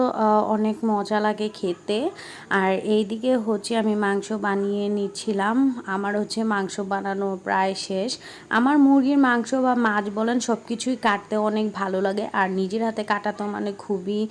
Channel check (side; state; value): both; identical; correlation 1.00